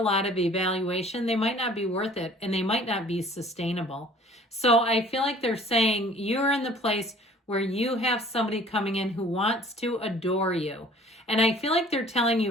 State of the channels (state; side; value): normal; both; correlation 0.51